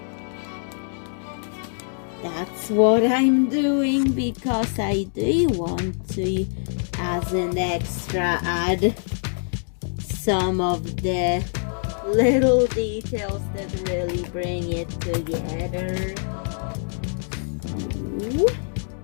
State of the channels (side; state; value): right; silent; digital silence